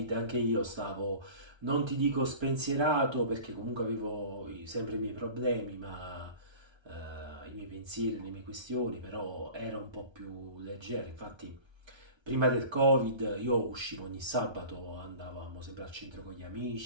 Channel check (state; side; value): late; left; 1.3 ms